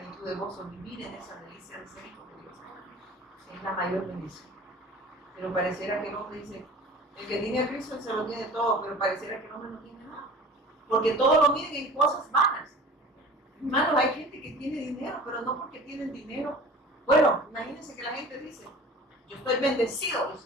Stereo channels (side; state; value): both; normal; correlation 0.41